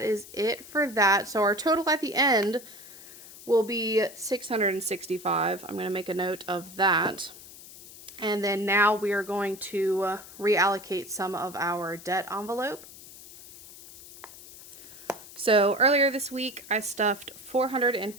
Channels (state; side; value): noise; left; hiss, 17 dB below the sound